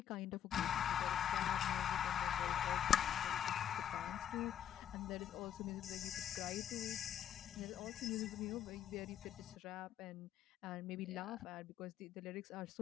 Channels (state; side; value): quieter; right; 9.8 dB